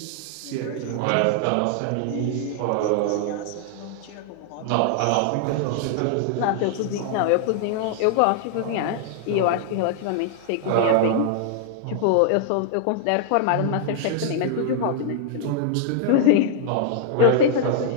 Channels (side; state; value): both; different; correlation -0.01